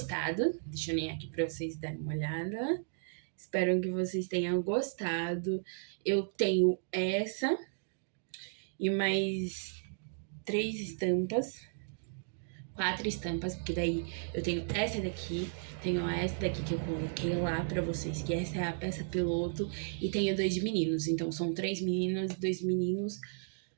Deixa eu alinhar aqui pra vocês darem uma olhada. Espero que vocês tenham gostado. Eu tenho essa e mais 3 estampas. 4 estampas, porque daí eu tenho essa daqui, tenho essa daqui que eu coloquei lá pra vocês, que essa é a peça piloto, e tenho 2 de meninos, então são 3 meninas e 2 meninos.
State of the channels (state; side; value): silent; left; digital silence